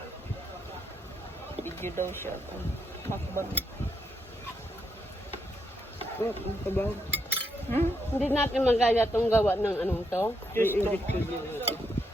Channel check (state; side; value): normal; both; correlation 0.79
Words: Video daw siya. Makbang. Ang kabaw. Hindi natin magaya itong gawa ng anong to. I-inject ko din.